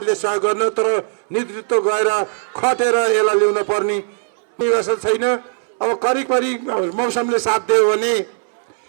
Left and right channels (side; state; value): left; silent; 66 dB below the other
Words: सहयोग गर्न, तर नेतृत्व गएर खटेर यसलाई ल्याउन पर्ने व्यवस्था छैन। अब करिब मौसमले साथ दियो भने